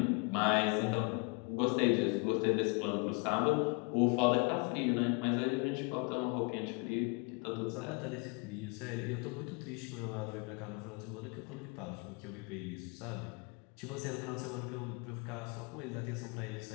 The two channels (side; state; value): right; quieter; 32.6 dB